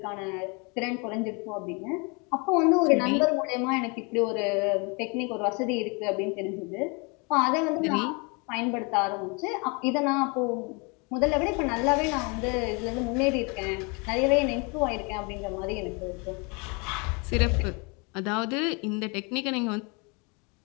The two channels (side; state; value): right; quieter; 31.2 dB